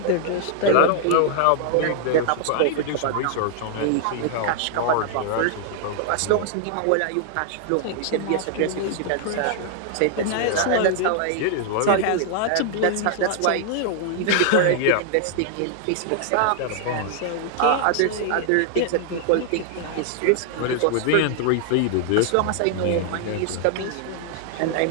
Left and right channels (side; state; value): both; different; correlation -0.01